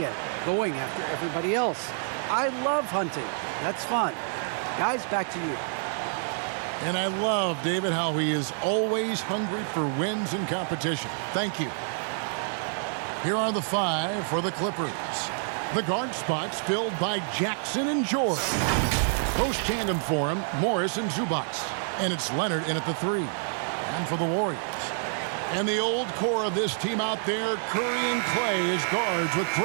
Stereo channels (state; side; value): silent; left; digital silence